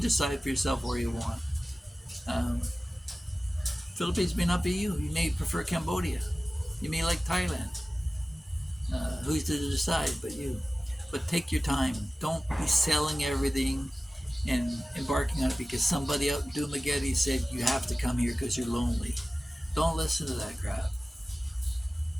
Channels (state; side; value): normal; both; correlation 0.96